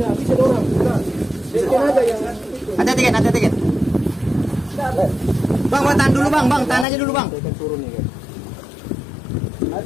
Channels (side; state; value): right; drops out; at 6.9 s